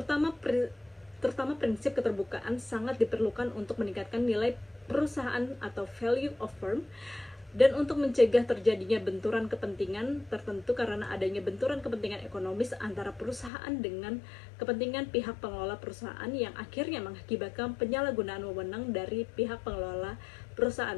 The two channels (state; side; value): drops out; right; at 13.5 s